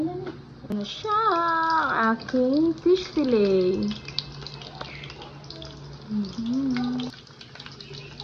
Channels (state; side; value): identical; both; correlation 1.00